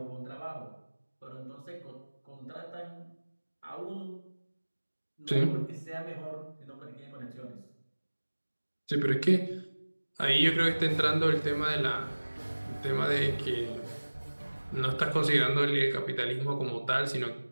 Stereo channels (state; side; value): inverted; both; correlation -1.00